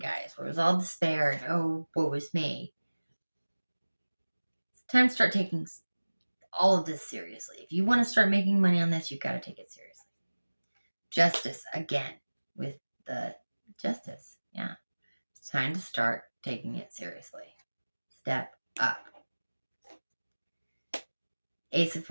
where it was all despair and, oh, woe is me. It's time to start taking all of this seriously. If you want to start making money on this, you've got to take it seriously. Justice, again, with the justice. Yeah. It's time to start taking it seriously. Step up. Ace of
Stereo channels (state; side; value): inverted; both; correlation -1.00